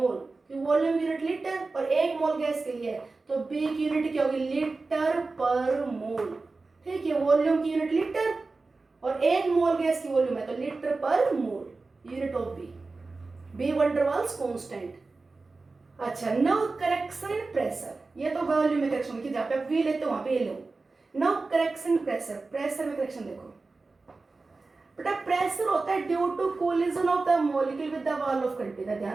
वॉल्यूम यूनिट लीटर और 1 मोल गैस के लिए, तो b की यूनिट क्या होगी लीटर पर मोल, ठीक है। वॉल्यूम की यूनिट लीटर और 1 मोल गैस की वॉल्यूम है तो लीटर पर मोल, यूनिट ऑफ b वंडरवाल्स कांस्टेंट। अच्छा, नाउ करेक्शन इन प्रेशर, ये तो वॉल्यूम में करेक्शन की, जहाँ पे आप v लेते हो वहां पे ये लो। नाउ करेक्शन प्रेशर, प्रेशर में करेक्शन देखो। बेटा प्रेशर होता है due to collision of the molecule with the wall of container,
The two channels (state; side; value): quieter; left; 3.7 dB